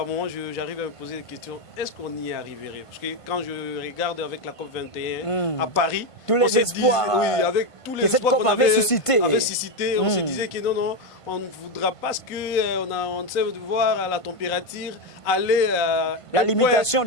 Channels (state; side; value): late; right; 1.5 ms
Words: moment, j'arrive à me poser des questions. Est-ce qu'on y arriverait? Parce que quand je regarde avec la COP 21 à Paris, tous les espoirs avec tous les que cette COP avait suscité, on se disait que non, on ne voudra pas ce qu'on sait de voir la température aller à... La limitation